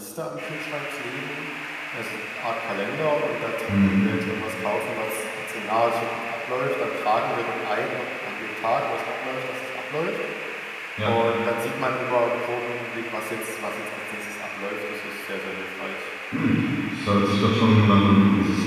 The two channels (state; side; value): identical; both; correlation 1.00